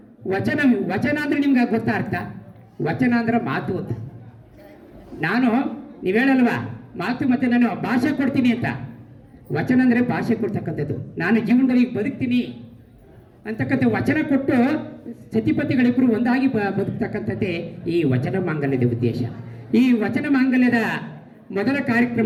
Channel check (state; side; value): identical; both; correlation 1.00